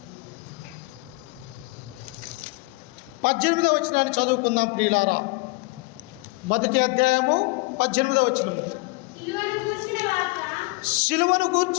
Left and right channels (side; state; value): right; quieter; 26.1 dB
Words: 18వ వచనాన్ని చదువుకుందాం ప్రియులారా. మొదటి అధ్యాయము 18వ వచనము. సిలువను